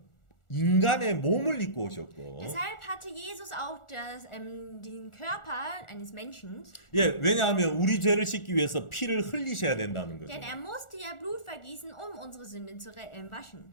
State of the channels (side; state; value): right; late; 1.4 ms